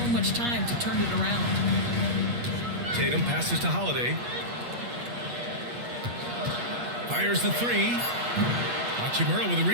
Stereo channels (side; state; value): left; late; 8.4 ms